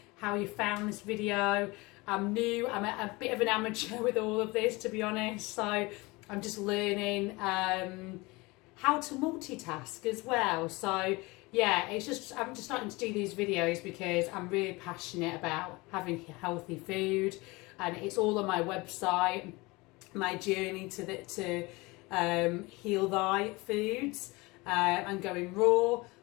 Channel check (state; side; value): quieter; right; 23.7 dB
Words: how you found this video. I'm new, I'm a bit of an amateur with all of this, to be honest, so I'm just learning how to multitask as well. So I'm just starting to do these videos because I'm really passionate about having healthy food, and it's all on my website, my journey to heal thy foods, and going raw,